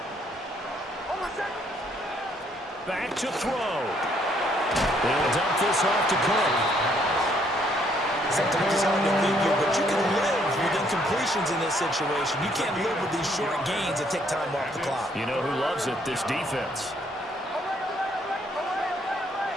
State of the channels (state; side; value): normal; both; correlation 0.68